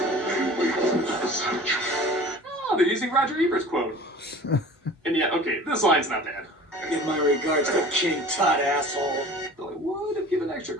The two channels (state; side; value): normal; both; correlation 0.42